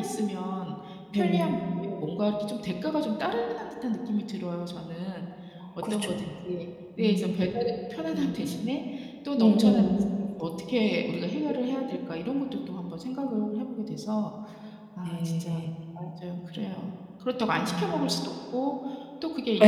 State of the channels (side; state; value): both; identical; correlation 1.00